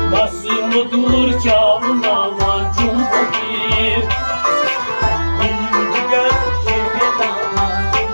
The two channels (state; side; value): inverted; both; correlation -1.00